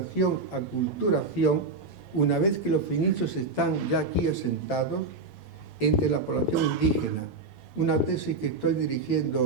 aculturación, una vez que los fenicios están ya aquí asentados, entre la población indígena. Una tesis que estoy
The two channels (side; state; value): left; quieter; 3.7 dB